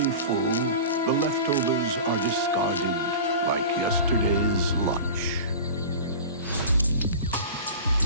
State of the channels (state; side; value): inverted; both; correlation -0.33